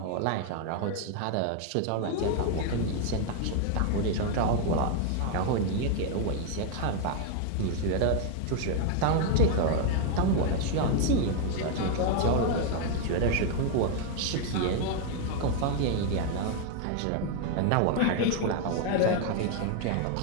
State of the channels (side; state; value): both; different; correlation 0.00